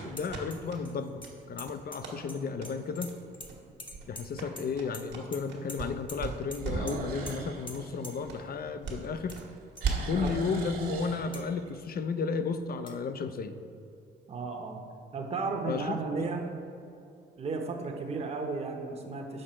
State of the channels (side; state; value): both; normal; correlation 0.45